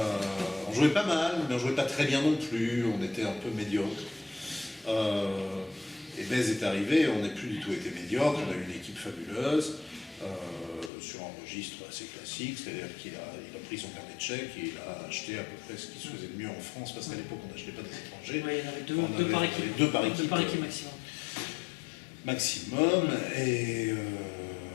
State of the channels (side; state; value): right; drops out; at 10.9 s